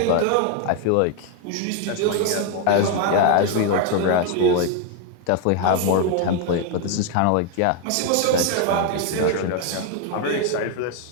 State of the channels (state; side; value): different; both; correlation 0.01